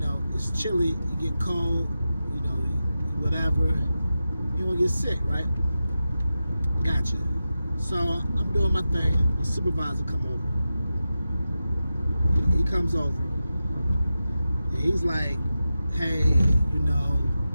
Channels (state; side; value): inverted; both; correlation -0.92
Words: it's chilly, you get cold, you know, whatever, you don't get sick, right? Gotcha. So I'm doing my thing, the supervisor come over. He comes over, and he's like, "Hey, you know,